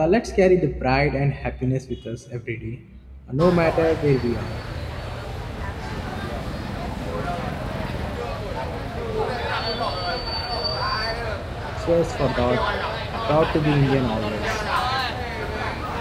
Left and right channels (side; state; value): both; identical; correlation 1.00